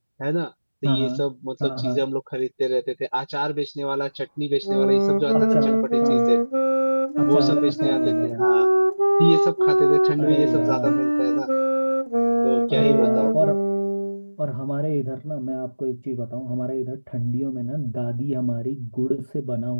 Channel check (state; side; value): inverted; both; correlation -1.00